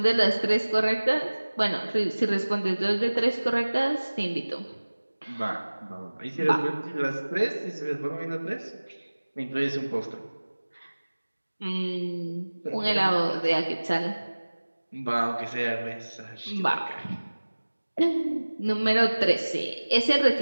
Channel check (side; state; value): both; inverted; correlation -1.00